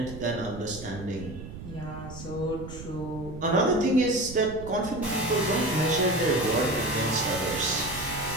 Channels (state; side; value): noise; right; rumble, 12 dB below the sound